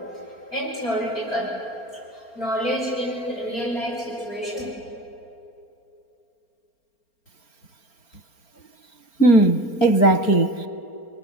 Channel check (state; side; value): late; right; 4.4 ms